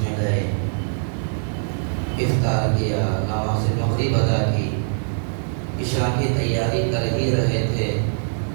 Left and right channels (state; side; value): silent; left; 64 dB below the other